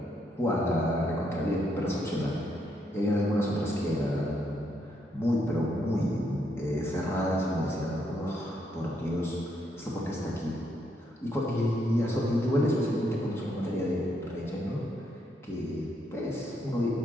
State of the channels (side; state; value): both; normal; correlation 0.76